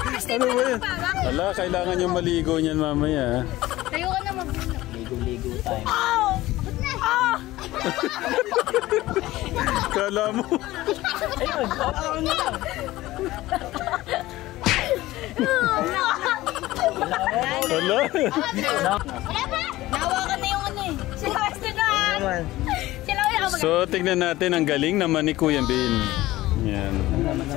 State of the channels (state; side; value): quieter; right; 17.2 dB